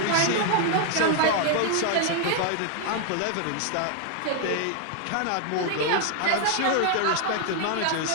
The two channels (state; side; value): different; both; correlation 0.00